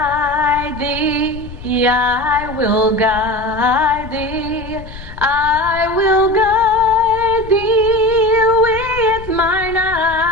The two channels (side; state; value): left; noise; rumble, 14 dB below the sound